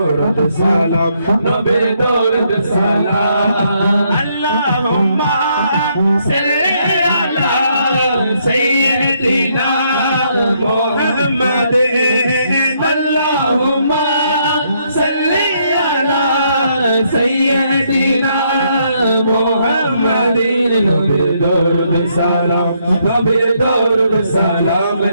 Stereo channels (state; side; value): inverted; both; correlation -0.73